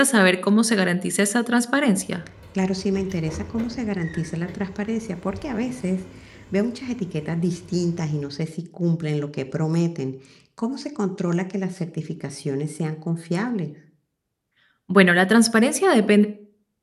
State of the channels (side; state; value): both; identical; correlation 1.00